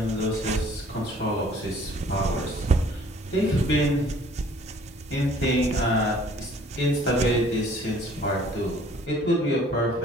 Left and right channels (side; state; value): both; normal; correlation 0.55